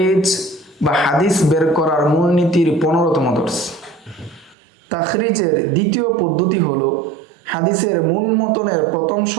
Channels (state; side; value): drops out; left; at 4.5 s